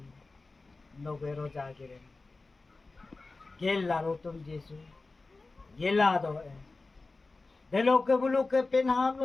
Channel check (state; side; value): quieter; right; 3.6 dB